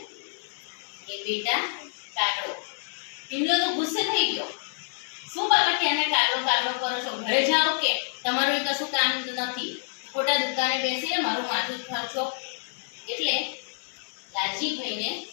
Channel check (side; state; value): right; silent; 59 dB below the other